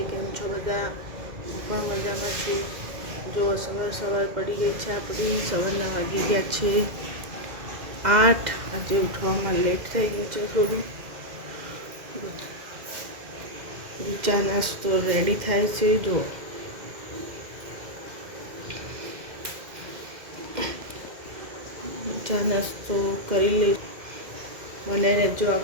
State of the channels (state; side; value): late; left; 2.0 ms